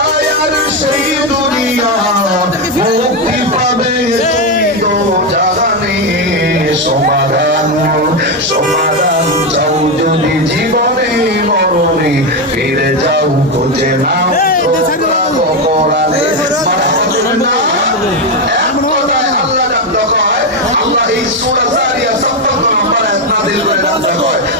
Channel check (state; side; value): normal; both; correlation 0.08